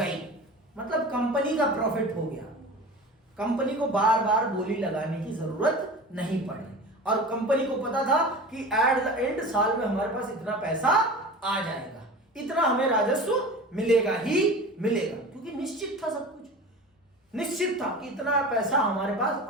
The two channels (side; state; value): both; normal; correlation 0.35